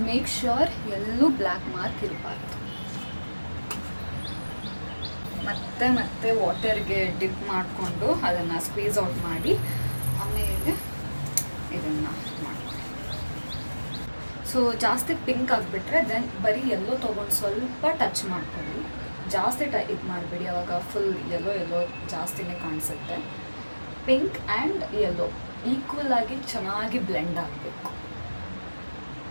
ಮೇಕ್ ಶ್ಯೂರ್ ಎಲ್ಲೂ ಬ್ಲ್ಯಾಕ್ ಮಾರ್ಕ್ ಇರಬಾರ್ದು. ಮತ್ತೆ ವಾಟರ್ಗೆ ಡಿಪ್ ಮಾಡಿಕೊಂಡು ಅದನ್ನು ಸ್ಕ್ವೀಸ್ ಔಟ್ ಮಾಡಿ ಆಮೇಲೆ ಇದನ್ನು ಮಾಡ್ಕೊಳ್ಳಿ. ಸೊ ಜಾಸ್ತಿ ಪಿಂಕ್ ಆಗಿಬಿಟ್ರೆ ದೆನ್ ಬರೀ ಎಲ್ಲೋ ತೊಗೊಂಡು ಸ್ವಲ್ಪ ಟಚ್ ಮಾಡ್ಕೊಳ್ಳಿ. ಜಾಸ್ತಿ ಇದು ಮಾಡಬೇಡಿ, ಅವಾಗ ಫುಲ್ ಎಲ್ಲೋ ಜಾಸ್ತಿನೇ ಕಾಣಿಸುತ್ತೆ. ಪಿಂಕ್ ಆ್ಯಂಡ್ ಯೆಲ್ಲೋ ಈಕ್ವಲ್ ಆಗಿ ಚೆನ್ನಾಗಿ ಬ್ಲೆಂಡ್ ಆಗಬೇಕು.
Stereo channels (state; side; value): inverted; both; correlation -1.00